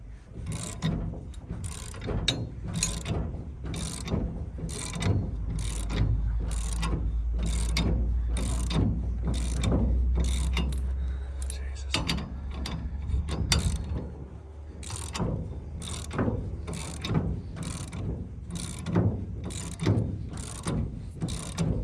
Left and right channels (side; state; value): both; identical; correlation 1.00